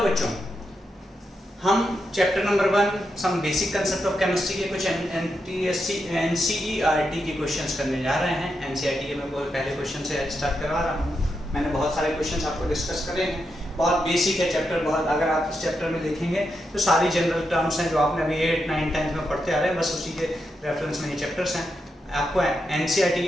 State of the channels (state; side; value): normal; both; correlation 0.85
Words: बच्चों, हम chapter number 1 some basic concept of chemistry के कुछ एनसीईआरटी के क्वेश्चंस करने जा रहे हैं। एनसीईआरटी के मैं पहले क्वेश्चन से स्टार्ट करवा रहा हूँ। मैंने बहुत सारे क्वेश्चंस आपको डिस्कस करे हैं। बहुत बेसिक है चैप्टर, बहुत अगर आप इस चैप्टर में देखेंगे तो सारी जनरल टर्म्स हैं जो आपने अभी 8, 9, 10 में पढ़ते आ रहे हैं, बस उसी के रेफरेंस में ये चैप्टर्स हैं। आपको एनसीईआरटी